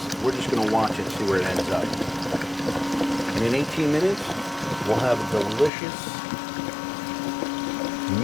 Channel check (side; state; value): right; drops out; at 5.7 s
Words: We're just going to watch it, see where it ends up. And in 18 minutes, we'll have a delicious